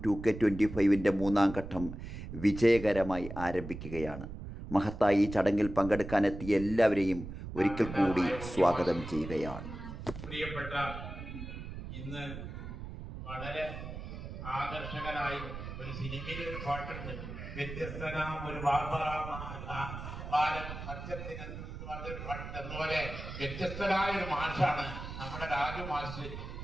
2K25 മൂന്നാം ഘട്ടം വിജയകരമായി ആരംഭിക്കുകയാണ്. മഹത്തായി ഈ ചടങ്ങിൽ പങ്കെടുക്കാനെത്തിയ എല്ലാവരെയും ഒരിക്കൽ കൂടി സ്വാഗതം ചെയ്യുകയാണ്. പ്രിയപ്പെട്ട ഇന്ന് വളരെ ആകർഷകനായി ഒരു സിനിമയിൽ ഒരു പാട്ടുണ്ട്, വ്യത്യസ്തനാം ഒരു ബാലൻ സത്യത്തിന് പറഞ്ഞൊരു പാട്ടുണ്ട്. അതുപോലെ വ്യത്യസ്തനായ ഒരു മാഷാണ് നമ്മുടെ രാജു മാഷ്.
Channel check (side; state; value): right; noise; rumble, 9 dB below the sound